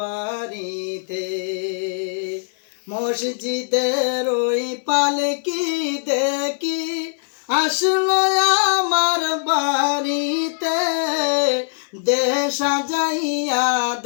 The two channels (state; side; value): silent; right; digital silence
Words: মসজিদের ওই পালকি দেখি আসলো আমার বাড়িতে, দে সাজাইয়া